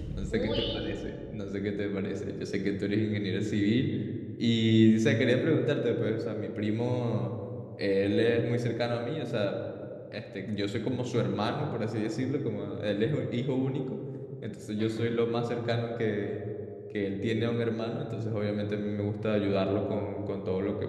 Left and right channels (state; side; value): identical; both; correlation 1.00